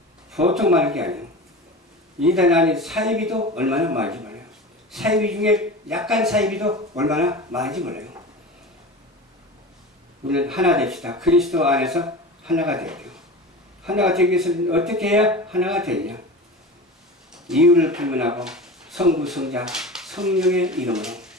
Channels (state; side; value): normal; both; correlation 0.32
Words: 보통 많은 게 아니에요. 이단 안에 사이비도 얼마나 많은지 몰라요. 사이비 중에 약간 사이비도 얼마나 많은지 몰라요. 우리는 하나 됩시다. 그리스도 안에서 하나가 돼야 돼요. 하나가 되기 위해서는 어떻게 해야 하나가 되느냐? 이유를 불문하고 성부, 성자, 성령의 이름으로